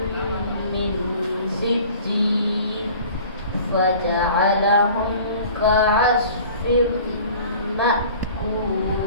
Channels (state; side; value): inverted; both; correlation -0.46